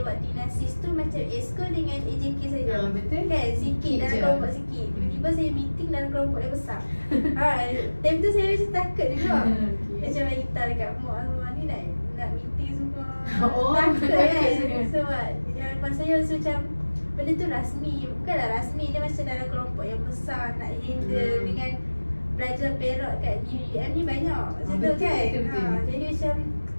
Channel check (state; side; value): inverted; both; correlation -1.00